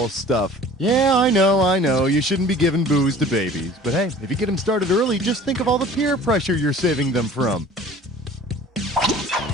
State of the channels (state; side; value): normal; both; correlation 0.47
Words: stuff. Yeah, I know. You shouldn't be giving booze to babies. But hey, if you get them started early, just think of all the peer pressure you're saving them from.